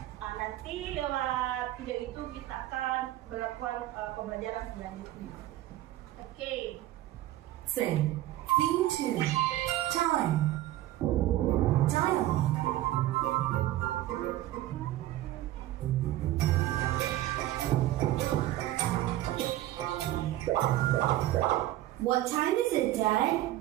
Nanti lewat video itu kita akan melakukan pembelajaran selanjutnya. Oke. Sing. Theme 2. Time. Dialogue. What time is it, Dad?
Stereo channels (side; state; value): left; quieter; 14.9 dB